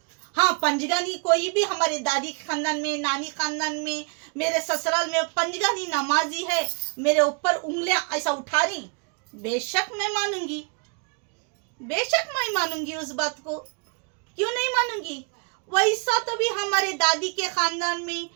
हाँ पंजगानी कोई भी हमारे दादी खानदान में, नानी खानदान में, मेरे ससुराल में पंजगानी नमाजी है, मेरे ऊपर उंगलियां ऐसा उठा रही, बेशक मैं मानूंगी, बेशक मैं मानूंगी उस बात को, क्यों नहीं मानूंगी। वैसा तो भी हमारे दादी के खानदान में,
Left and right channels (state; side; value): quieter; left; 36.5 dB